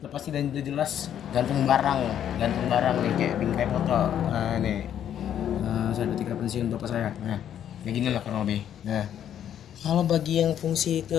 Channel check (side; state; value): right; quieter; 10.0 dB